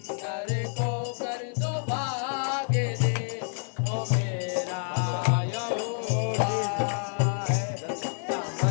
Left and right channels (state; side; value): silent; right; 59 dB below the other